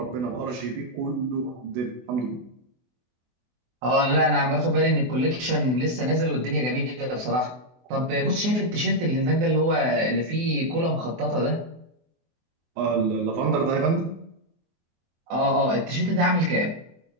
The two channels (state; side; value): late; left; 24 ms